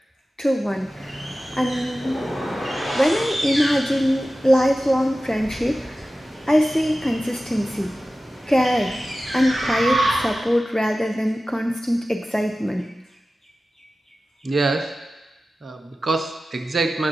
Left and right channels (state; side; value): normal; both; correlation 0.95